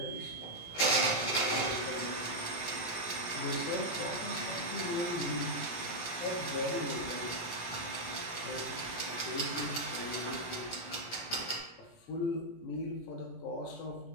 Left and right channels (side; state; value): right; late; 17 ms